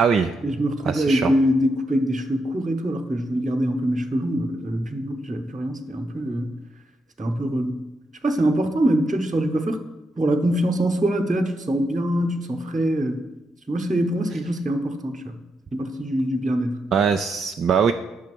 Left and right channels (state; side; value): normal; both; correlation 0.83